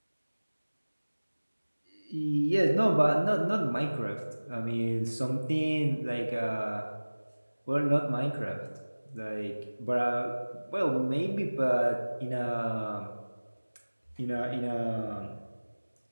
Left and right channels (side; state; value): both; inverted; correlation -1.00